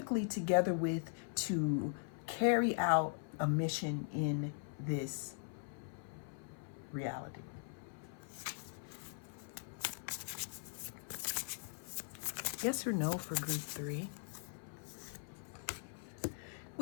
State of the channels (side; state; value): right; silent; 51 dB below the other